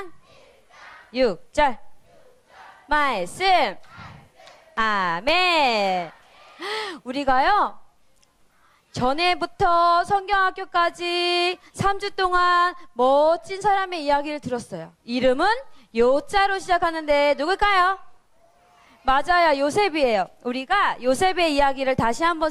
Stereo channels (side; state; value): both; identical; correlation 1.00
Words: 6절 말씀. 아멘. 우리가요 전에부터 성경학교까지 3주 동안 멋진 사람의 이야기를 들었어요. 이름은 요자로 시작하는데 누굴까요? 맞아요. 요셉이에요. 우리가 요셉의 이야기를 다시 한번